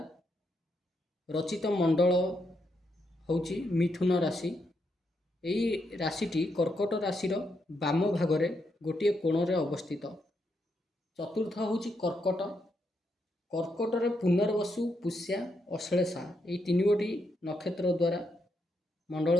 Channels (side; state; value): both; normal; correlation 0.80